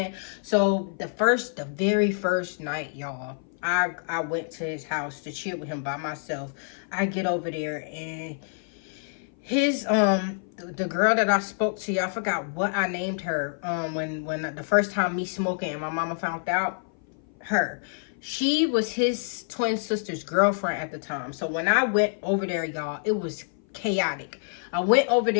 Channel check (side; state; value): right; silent; 57 dB below the other